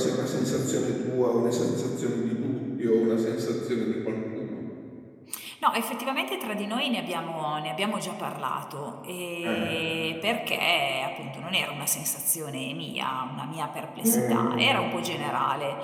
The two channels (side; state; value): both; identical; correlation 1.00